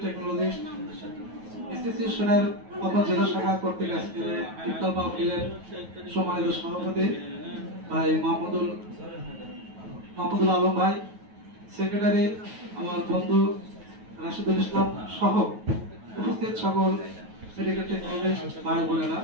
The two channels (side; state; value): left; late; 9.3 ms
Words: টেকনোলজি অ্যাসোসিয়েশনের পাবনা জেলা শাখা কর্তৃক আজকে ইফতার মাহফিলের সম্মানিত সভাপতি ভাই মাহমুদুল আলম ভাই, সেক্রেটারি আমার বন্ধু রাশিদুল ইসলাম সহ উপস্থিত সকল মেডিকেল টেকনোলজি ভাই বোনেরা,